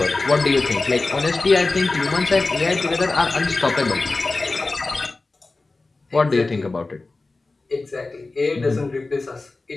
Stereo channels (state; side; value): quieter; right; 3.4 dB